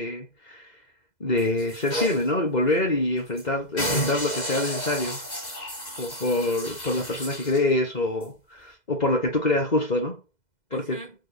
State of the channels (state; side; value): late; right; 2.0 ms